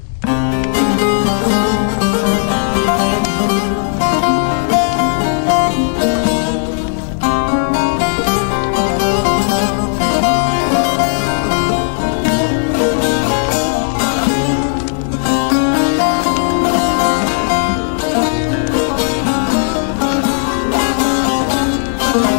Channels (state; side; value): silent; right; digital silence